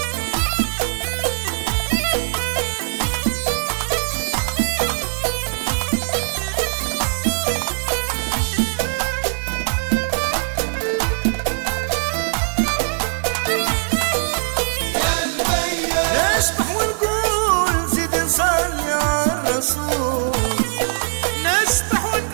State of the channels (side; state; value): left; silent; digital silence